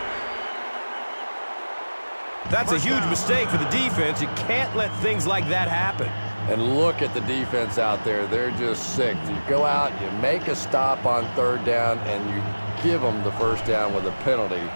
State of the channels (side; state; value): both; inverted; correlation -1.00